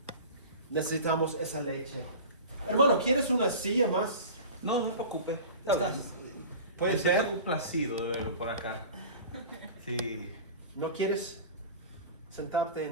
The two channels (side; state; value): both; inverted; correlation -0.36